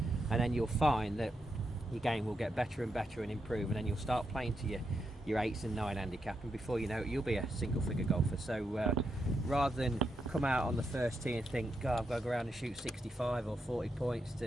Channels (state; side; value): normal; both; correlation 0.83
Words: and then you'll find that your game will get better and better and improve, and then you'll start playing to your 8s and 9 handicap, and before you know it, you'll be a single figure golfer. So rather than come out on the first tee and think, God, I've got to go around and shoot 65 or 40 points